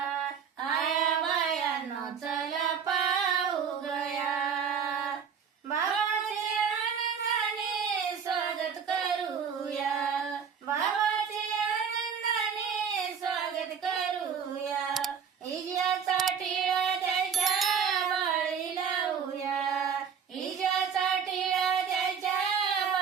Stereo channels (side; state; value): left; quieter; 7.0 dB